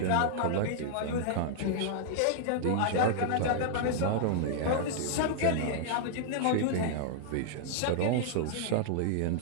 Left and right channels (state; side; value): different; both; correlation -0.01